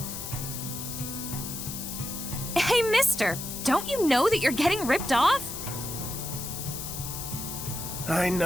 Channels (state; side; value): noise; left; hiss, 7 dB below the sound